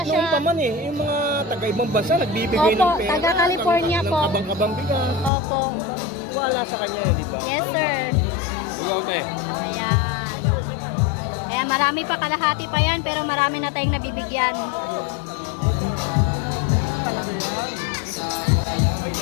Kahit siya. noon pa man yung mga taga-ibang bansa, nagbibigay Opo, ng pera. taga-California po. Ng kabang-kabang bigas. Opo. Wala sa kanya yun, di ba? Yes, sir. Ayan. Kaya marami pa, kalahati pa yan, pero marami na tayong nabibigyan.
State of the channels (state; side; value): drops out; right; at 5.3 s